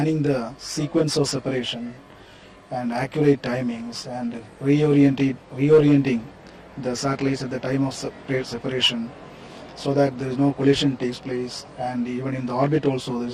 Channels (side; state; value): both; identical; correlation 1.00